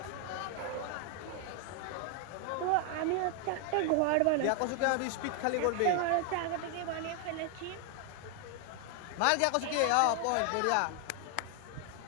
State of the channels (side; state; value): both; different; correlation 0.00